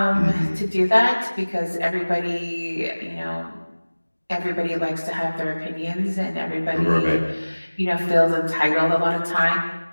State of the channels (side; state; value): both; inverted; correlation -1.00